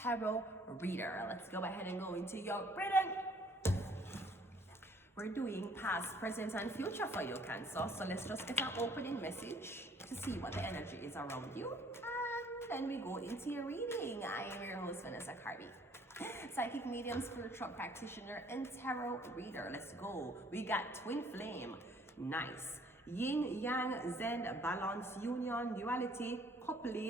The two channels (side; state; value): both; normal; correlation 0.60